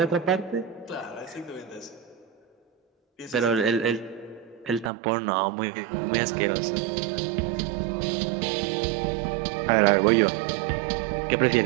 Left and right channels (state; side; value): drops out; left; at 4.9 s